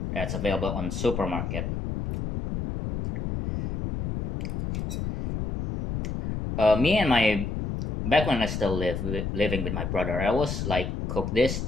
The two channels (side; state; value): left; noise; rumble, 3 dB below the sound